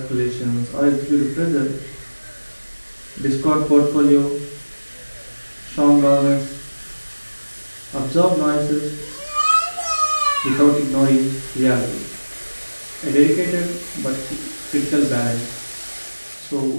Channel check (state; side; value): inverted; both; correlation -1.00